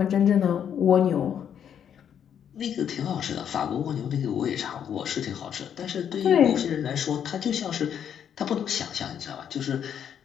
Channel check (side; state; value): right; quieter; 8.7 dB